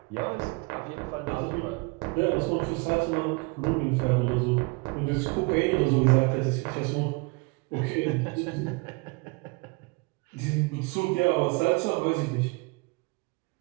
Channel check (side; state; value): left; quieter; 28.6 dB